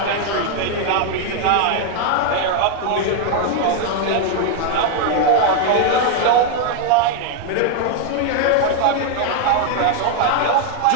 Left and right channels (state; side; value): different; both; correlation 0.00